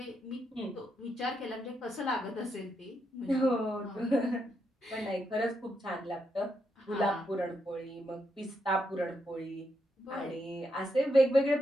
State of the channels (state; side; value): normal; both; correlation 0.81